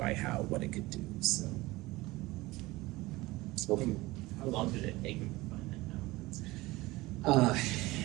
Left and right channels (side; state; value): left; quieter; 20.2 dB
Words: what it could do. So, how long did it take him to find